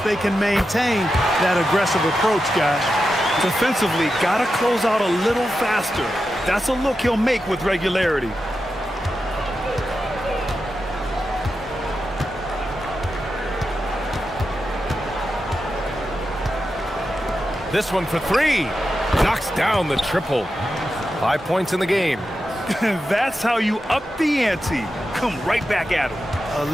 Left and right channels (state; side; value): normal; both; correlation 0.89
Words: they can maintain that aggressive approach, guys. Defensively, got to close out a little faster. That's a look he'll make with regularity. This one for 3. Knocks down the triple. 5 points in the game. That's how you up the ante. Come right back at him. A